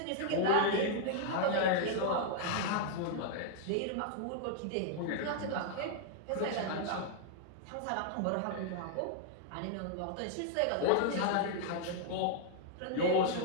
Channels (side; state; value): both; different; correlation -0.01